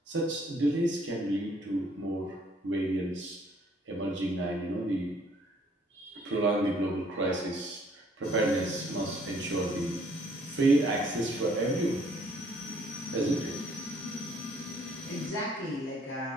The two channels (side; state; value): both; normal; correlation 0.63